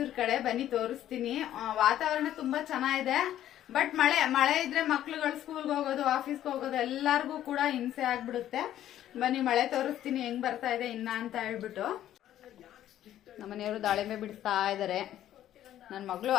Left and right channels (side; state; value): right; quieter; 12.1 dB